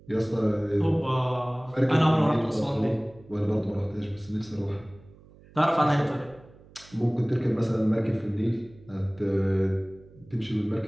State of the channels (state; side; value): noise; right; hum, 24 dB below the sound